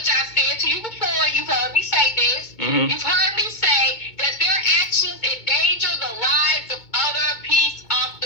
I said to you before, you've heard me say this, you've heard me say that their actions endanger the lives of other peace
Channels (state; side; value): late; right; 2.2 ms